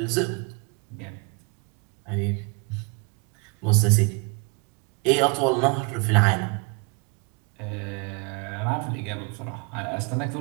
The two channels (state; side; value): quieter; left; 31.5 dB